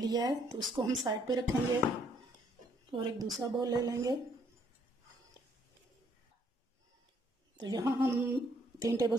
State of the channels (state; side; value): normal; both; correlation 0.68